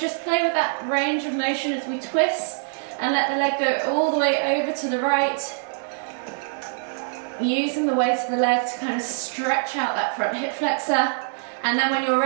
play with that range of motion as we twist and let the leg go all the way over to the right. Using the weight of the leg to kind of stretch out that front hip flexor. And then when you're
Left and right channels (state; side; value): silent; left; digital silence